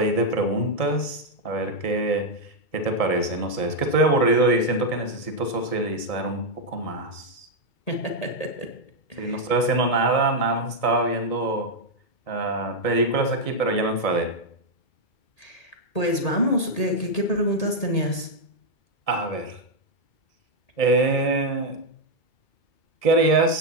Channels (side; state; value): right; late; 1.7 ms